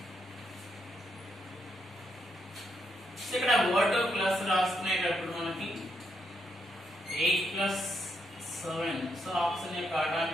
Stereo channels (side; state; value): both; normal; correlation 0.79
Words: so ఇక్కడ O2 plus రాసుకునేటప్పుడు మనకి 8 ప్లస్ 7 సో ఆప్షన్ యొక్క